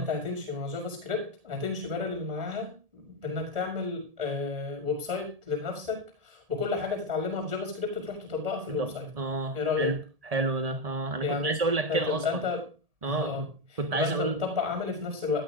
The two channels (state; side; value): late; left; 1.7 ms